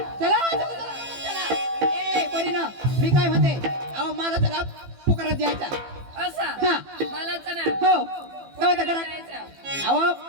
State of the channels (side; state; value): left; late; 15 ms